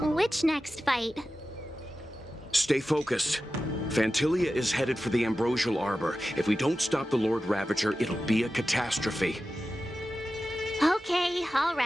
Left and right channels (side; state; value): both; normal; correlation 0.93